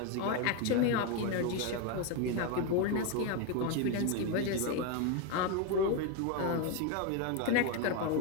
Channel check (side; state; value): both; different; correlation 0.02